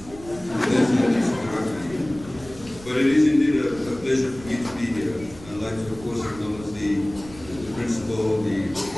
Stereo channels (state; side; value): noise; right; rumble, 18 dB below the sound